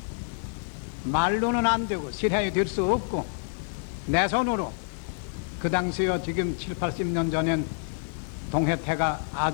말로는 안 되고 실행이 될 수 없고 내 손으로 그 당시에 지금 7, 80년 전엔 동해태가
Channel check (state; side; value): silent; right; 59 dB below the other